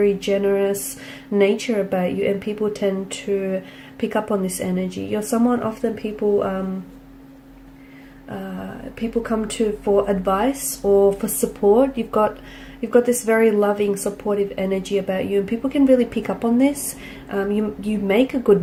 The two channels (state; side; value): identical; both; correlation 1.00